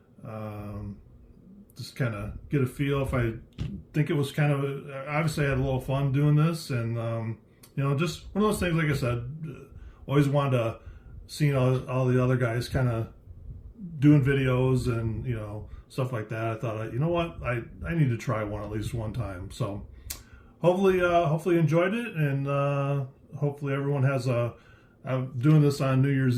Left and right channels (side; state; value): both; identical; correlation 1.00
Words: just kind of get a feel. If I think it was kind of, obviously I had a little fun doing this, and just one of those things. Like I said, always wanted to see all the other guys kind of doing videos and stuff like that. I thought, you know what, I need to try one at least one time. So hopefully enjoyed it, and hopefully everyone has I'm doing this on New